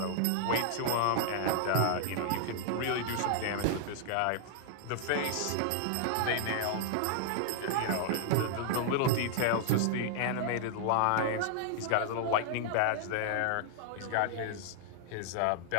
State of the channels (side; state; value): both; different; correlation -0.01